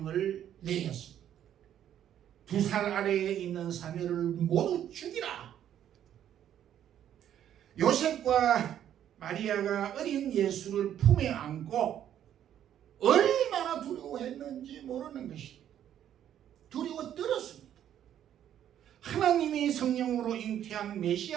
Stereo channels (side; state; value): left; quieter; 10.5 dB